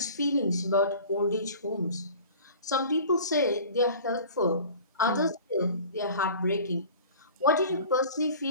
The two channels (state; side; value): inverted; both; correlation -0.43